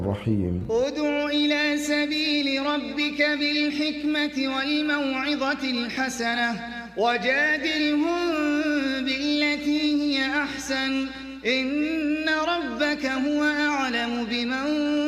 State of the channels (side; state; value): both; identical; correlation 1.00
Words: ادع إلى سبيل ربك بالحكمة والموعظة الحسنة وجادلهم بالتي هي أحسن إن ربك هو أعلم بمن